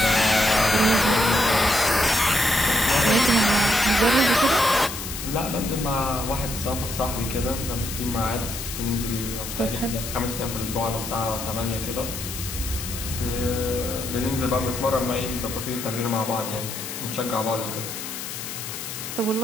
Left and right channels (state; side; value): noise; left; hiss, 7 dB below the sound